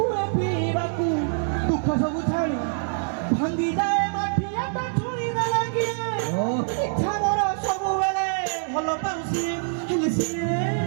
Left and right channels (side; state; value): left; silent; digital silence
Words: पीबाकू दुख सब छाड़ी भांगी जाए माठिया ता छुई न लागी इच्छा मोर सब बेले भलो पाउसी हेले सिए